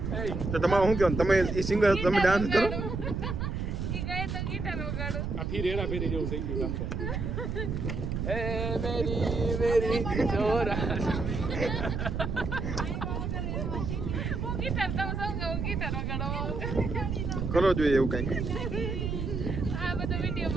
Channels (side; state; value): right; noise; rumble, 2 dB below the sound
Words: તો તમારું શું કહેવાનું? તમે એ સિંગર તમે ડાન્સ કરો ઈ ગયે તો ગિટાર વગાડો આ ફીર હેરા ફેરી જેવું થઈ ગયું કામ તો. એ મેરી ચોરા. હું ગિટાર તમે સૌ હું ગિટાર વગાડો કરો જોઈએ એવું કંઈક આ બધો